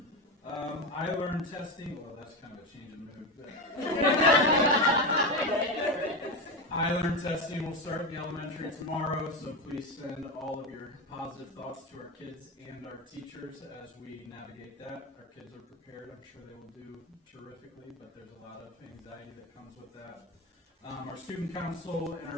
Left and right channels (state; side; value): normal; both; correlation 0.17